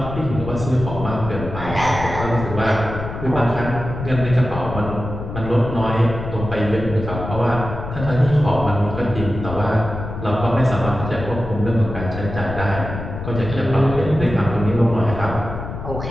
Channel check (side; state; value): left; noise; rumble, 8 dB below the sound